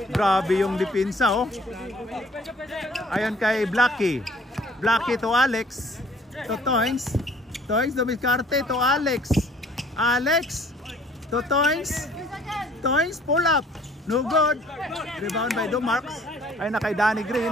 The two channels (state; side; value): normal; both; correlation 0.56